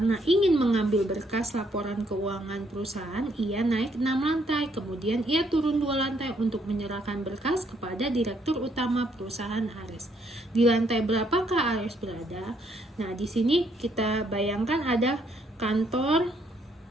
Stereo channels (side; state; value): both; normal; correlation 0.71